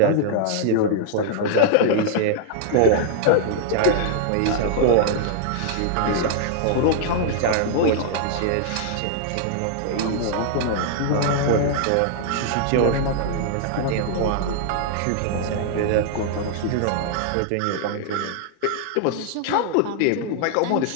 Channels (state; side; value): different; both; correlation -0.01